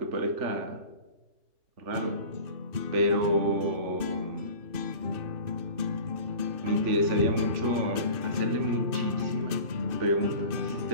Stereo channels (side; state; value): left; late; 2.6 ms